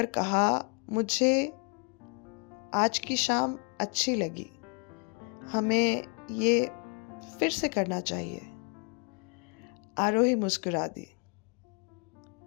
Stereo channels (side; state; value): right; quieter; 35.5 dB